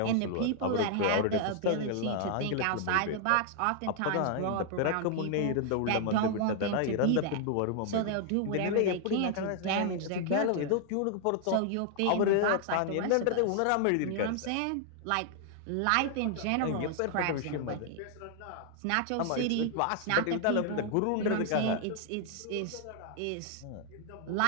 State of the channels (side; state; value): both; different; correlation 0.00